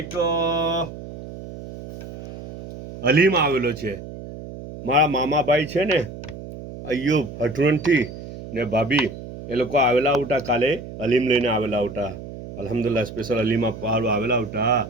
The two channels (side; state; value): right; noise; hum, 12 dB below the sound